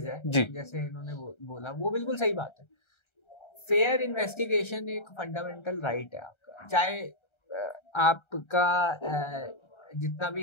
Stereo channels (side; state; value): right; late; 1.3 ms